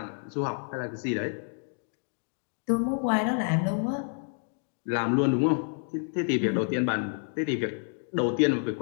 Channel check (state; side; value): silent; right; 59 dB below the other